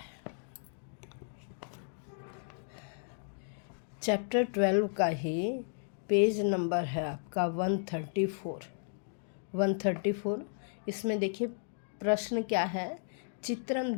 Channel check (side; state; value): right; silent; digital silence